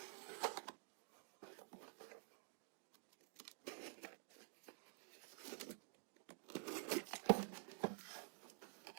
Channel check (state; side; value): silent; left; digital silence